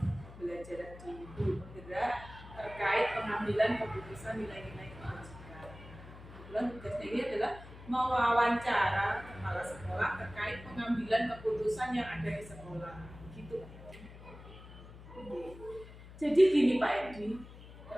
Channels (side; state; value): left; noise; hum, 16 dB below the sound